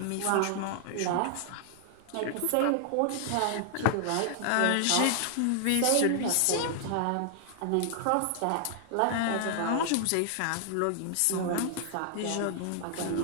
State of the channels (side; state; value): both; different; correlation 0.00